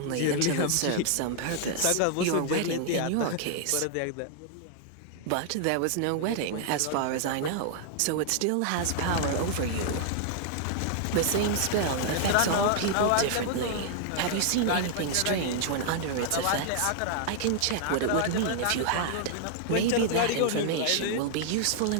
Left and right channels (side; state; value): both; different; correlation 0.00